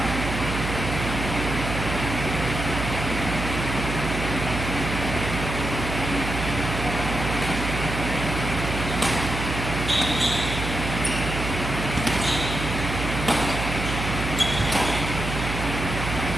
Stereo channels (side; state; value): right; noise; hum, 4 dB below the sound